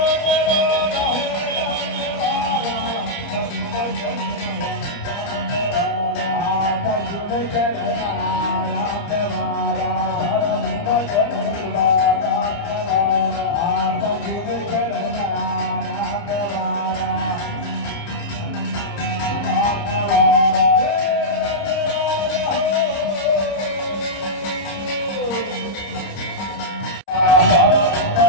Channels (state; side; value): late; right; 30 ms